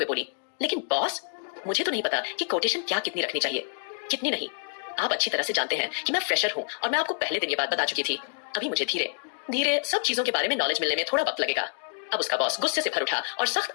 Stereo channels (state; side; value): silent; right; digital silence